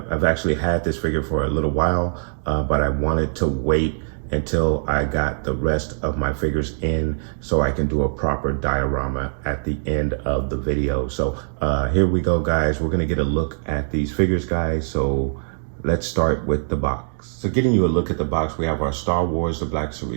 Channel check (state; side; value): silent; left; digital silence